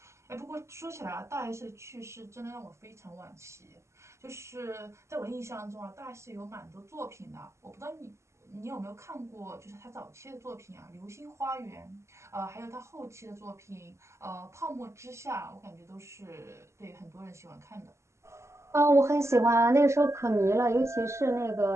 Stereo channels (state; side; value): late; left; 0.13 ms